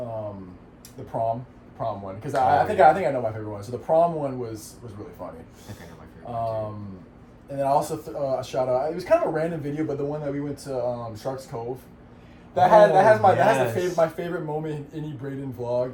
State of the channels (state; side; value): identical; both; correlation 1.00